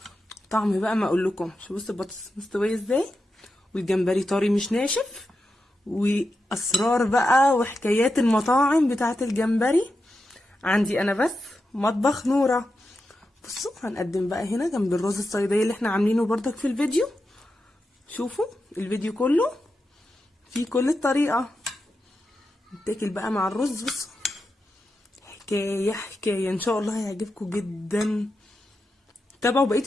طعم بقى ما اقولكم. شوفوا بصوا البطاطس مستوية ازاي والجمبري طري مش ناشف، واسرار بقى وحكايات المطاعم بتاعة الجمبري عندي انا بس مطبخ نورة. بصوا هنقدم بقى هنا جنب الرز الصيادية اللي احنا عاملينه بردك في الفيديو. شوفوا الفيديو كله فيه كل الطريقة. نتاكل بقى مع الرز. بصوا حكاية حكاية، ان شاء الله هيعجبكم جدا. تابعوا بقية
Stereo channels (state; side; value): normal; both; correlation 0.89